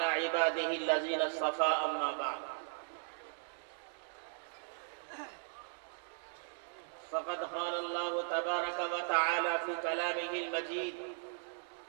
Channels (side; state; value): left; silent; digital silence